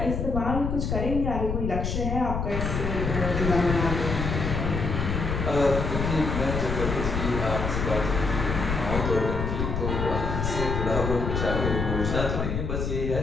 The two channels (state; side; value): noise; left; rumble, 2 dB below the sound